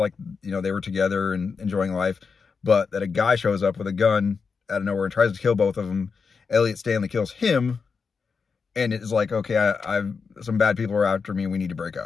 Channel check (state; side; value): quieter; right; 5.3 dB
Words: you know, they were together and enjoying life, but that a guy shows up with a gun out of nowhere and tries to kill both of them. Elliot Stanley kills him, and it's like, okay, some bad people are after me, and we need to break